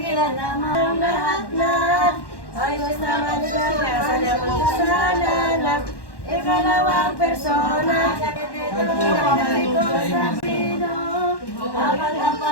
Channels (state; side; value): late; right; 1.1 ms